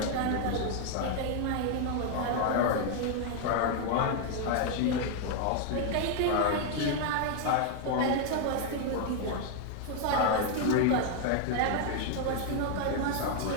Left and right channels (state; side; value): different; both; correlation 0.00